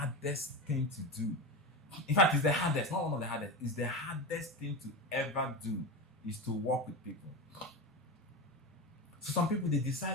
things to do. In fact, it's the hardest, not one of the hardest. It's the hardest thing to ever do is to work with people. So some people, they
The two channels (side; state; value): both; normal; correlation 0.21